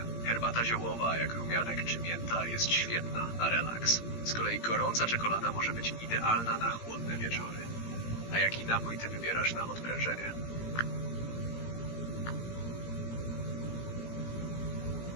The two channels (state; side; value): late; right; 17 ms